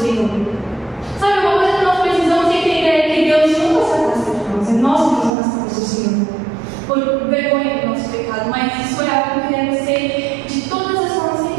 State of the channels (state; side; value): drops out; left; at 5.3 s